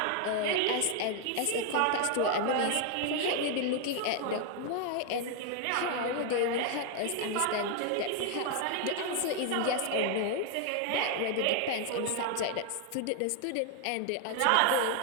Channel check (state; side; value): different; both; correlation 0.00